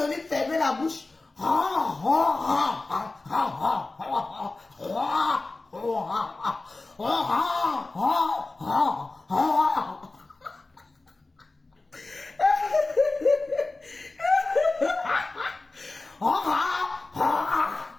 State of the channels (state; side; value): quieter; right; 3.3 dB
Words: lui fermer la bouche.